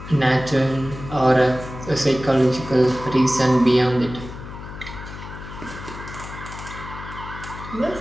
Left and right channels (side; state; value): left; noise; hum, 12 dB below the sound